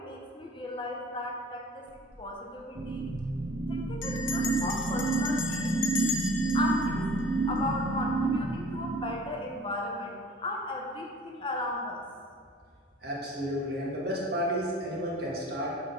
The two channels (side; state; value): both; normal; correlation 0.45